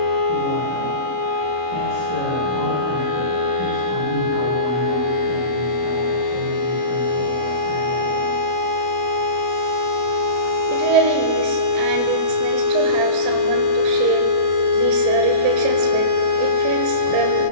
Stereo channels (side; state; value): left; late; 33 ms